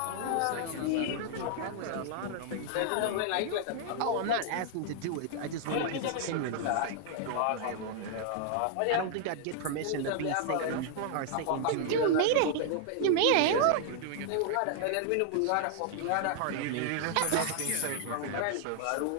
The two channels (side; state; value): both; different; correlation 0.00